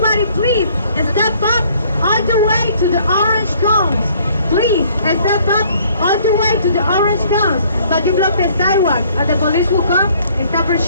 please step up all the way to the orange cones. Please, step up all the way to the orange cones. But you block the sidewalk and the police will come and stop our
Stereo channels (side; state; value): both; inverted; correlation -0.60